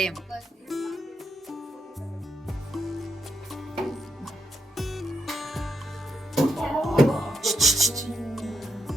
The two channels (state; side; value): normal; both; correlation 0.79